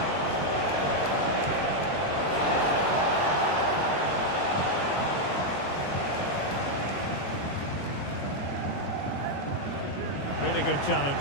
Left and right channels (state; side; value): late; right; 21 ms